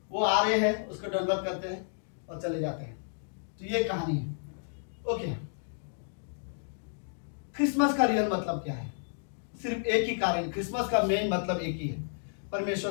वो आ रहे हैं, उसको दंडवत करते हैं और चले जाते हैं। तो ये कहानी है। ओके, क्रिसमस का रियल मतलब क्या है? सिर्फ एक ही कारण, क्रिसमस का मेन मतलब एक ही है, परमेश्वर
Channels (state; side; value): silent; right; digital silence